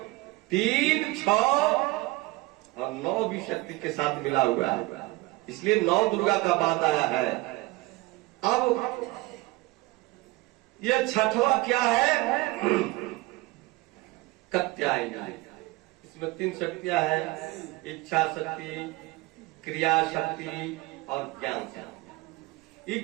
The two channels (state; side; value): quieter; left; 21.4 dB